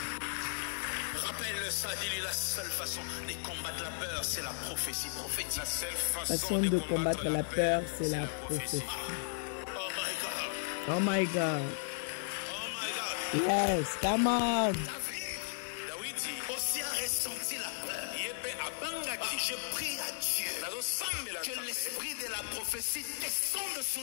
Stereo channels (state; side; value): silent; right; 54 dB below the other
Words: Rappelle ça, dis-lui, la seule façon de combattre la peur, c'est la prophétie. Prophétie. La seule Façon de combattre la peur, c'est la prophétie. Oh my God. Oh my God. Oh my God. Yes, come on. David aussi a ressenti la peur. Je prie à Dieu que l'esprit de la prophétie descende sur